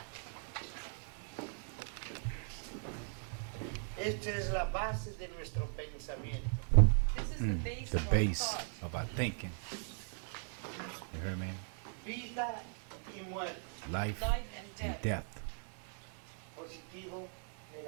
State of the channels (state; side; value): silent; left; 52 dB below the other